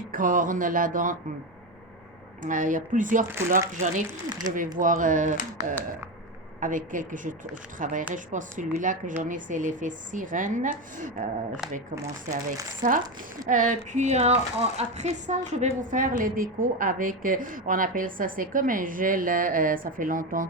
là-dedans. Il y a plusieurs couleurs que j'en ai. Je vais voir avec quel que je travaillerai. Je pense que celui-là que j'en ai, c'est l'effet sirène. Je vais commencer avec ça. Après ça, je vais vous faire les décos avec, on appelle ça, c'est comme un gel. Ça fait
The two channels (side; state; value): both; normal; correlation 0.15